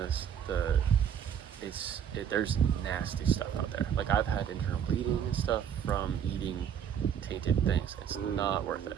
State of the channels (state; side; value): quieter; left; 8.6 dB